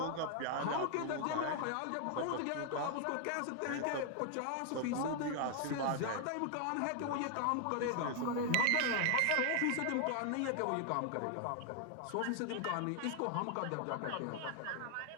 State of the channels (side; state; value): both; different; correlation 0.00